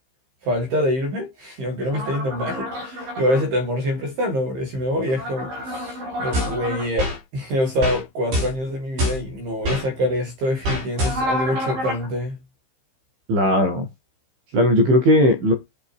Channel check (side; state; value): left; late; 15 ms